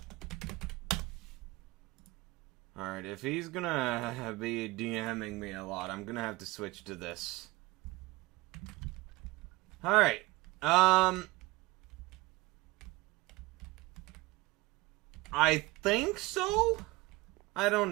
Alright, if he's gonna be DMing me a lot, I'm gonna have to switch to this. Alright, I think so? I don't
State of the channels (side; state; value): left; quieter; 21.7 dB